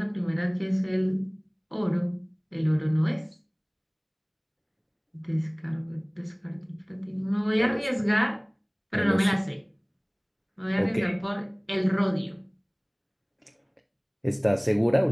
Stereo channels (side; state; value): both; identical; correlation 1.00